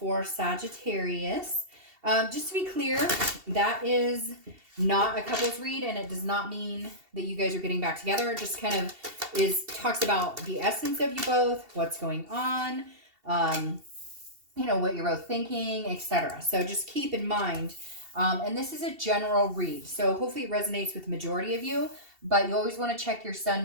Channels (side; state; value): left; late; 2.7 ms